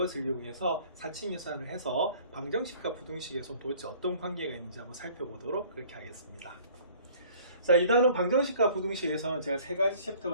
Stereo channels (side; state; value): both; inverted; correlation -0.52